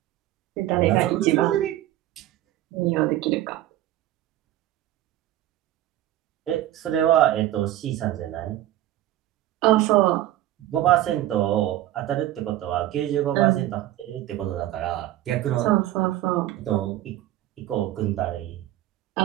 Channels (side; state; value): left; quieter; 14.2 dB